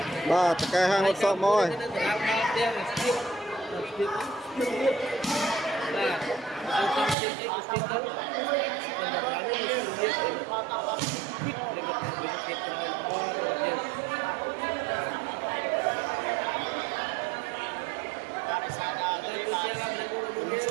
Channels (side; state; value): left; drops out; at 7.2 s